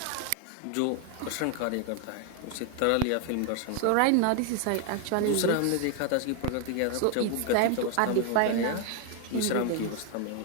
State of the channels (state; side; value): different; both; correlation 0.01